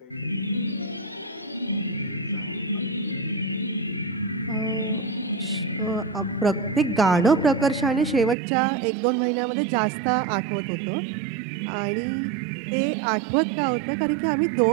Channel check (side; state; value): left; drops out; at 8.3 s